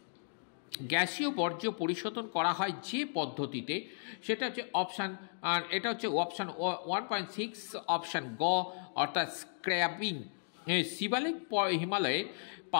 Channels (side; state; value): right; silent; digital silence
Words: গ্যাসীয় বর্জ্য পরিশোধন করা হয় যে পদ্ধতিতে সেটা হচ্ছে অপশান, আর এটা হচ্ছে অপশান 1.6 অপশান গ অর্থাৎ স্ক্র্যাবিং। শিবালিক হিমালয়ের